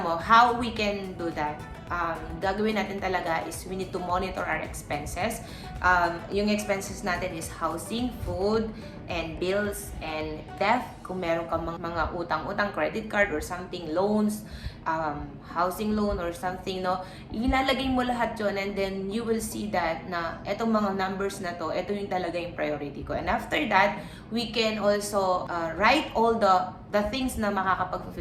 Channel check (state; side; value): identical; both; correlation 1.00